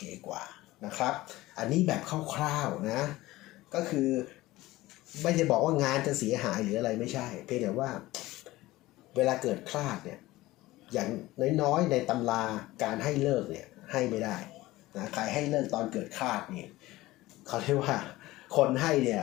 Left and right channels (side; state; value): right; quieter; 18.1 dB